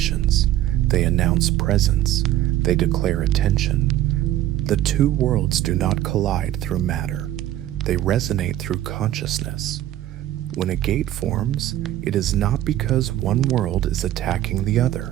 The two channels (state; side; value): quieter; left; 13.3 dB